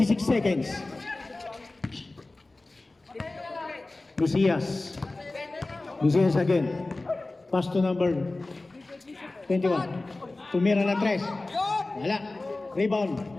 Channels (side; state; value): right; quieter; 3.0 dB